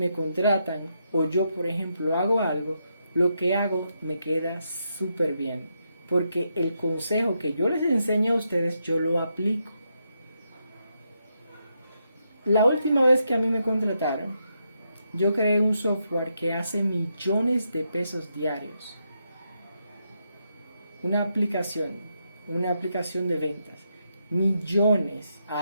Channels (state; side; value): inverted; both; correlation -0.81